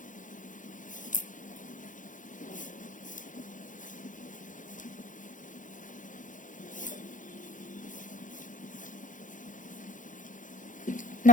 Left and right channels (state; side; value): late; right; 0.37 ms